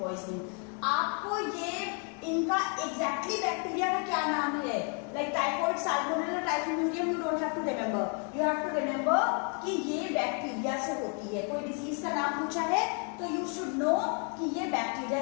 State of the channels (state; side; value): quieter; right; 39.2 dB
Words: आपको ये इनका एग्जैक्टली बैक्टीरिया का क्या नाम है, like typhoid, salmonella, typhimurium, you don't have to remember, you have to remember कि ये बैक्टीरिया से होती है। कोई डिजीज का नाम पूछा है तो यू शुड नो कि ये बैक्टीरिया